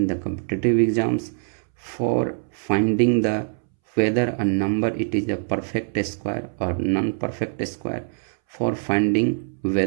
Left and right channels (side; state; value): left; silent; 63 dB below the other